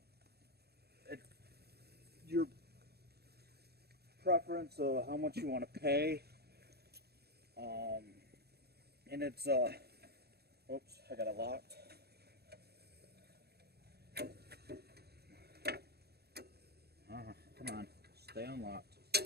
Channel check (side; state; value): left; late; 0.47 ms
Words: your preference of how much you want to pay, and it's oops, I got it locked. Come on, stay unlocked.